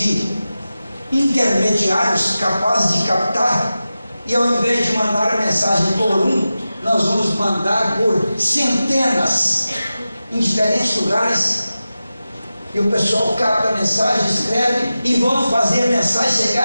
intermediários capazes de captar, e ao invés de mandar a mensagem por um, nós vamos mandar por centenas em diferentes lugares. E o pessoal capta a mensagem, escreve e vão fazer a mensagem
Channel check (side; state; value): both; inverted; correlation -0.94